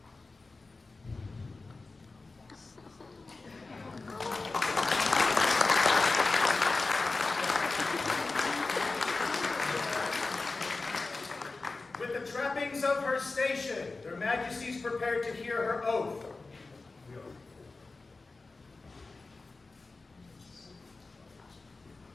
With the trappings of her station, their Majesties prepared to hear her oath.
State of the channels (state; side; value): quieter; right; 3.6 dB